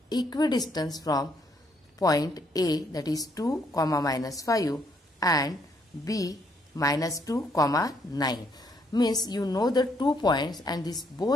equidistant from point A, that is 2, -5 and B -2, 9. Means you know the 2 points and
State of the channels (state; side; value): normal; both; correlation 0.71